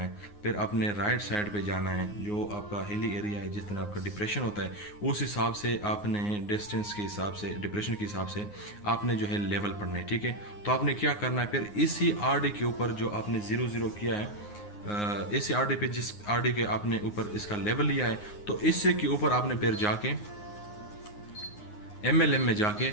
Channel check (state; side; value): late; right; 9.6 ms